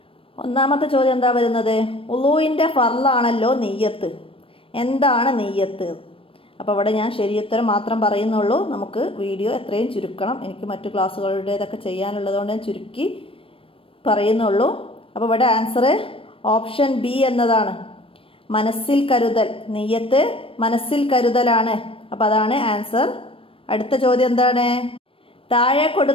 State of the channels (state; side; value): late; right; 0.26 ms